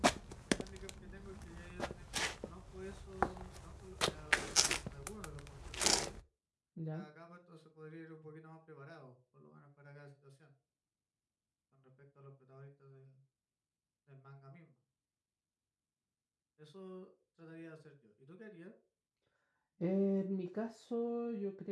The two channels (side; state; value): both; identical; correlation 1.00